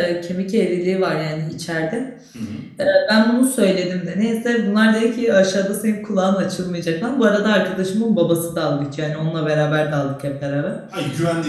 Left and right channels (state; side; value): identical; both; correlation 1.00